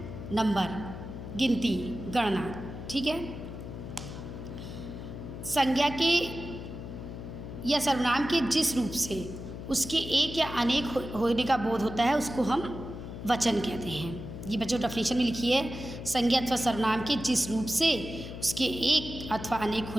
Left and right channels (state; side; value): noise; left; hum, 9 dB below the sound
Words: नंबर, गिनती, गणना, ठीक है। संज्ञा के या सर्वनाम के जिस रूप से उसके एक या अनेक होने का बोध होता है उसको हम वचन कहते हैं। ये बच्चों डेफिनेशन में लिखी है, संज्ञा अथवा सर्वनाम के जिस रूप से उसके एक अथवा अनेक